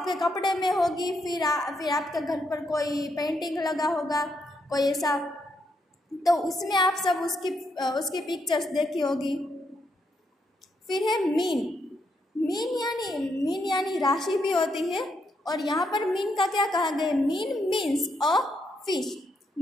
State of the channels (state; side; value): normal; both; correlation 0.78